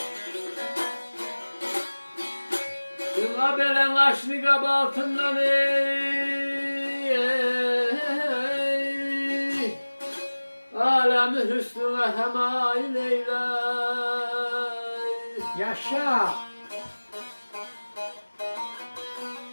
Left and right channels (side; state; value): both; inverted; correlation -1.00